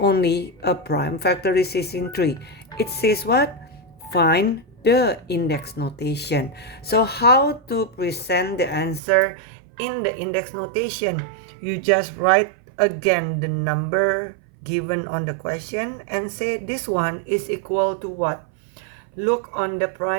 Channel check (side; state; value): left; drops out; at 9.0 s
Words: a prime factorization tree. It says what? Find the index notation. So how to present the answer in the index notation? You just write again the number given on the question and say this one is equal to what? Look on the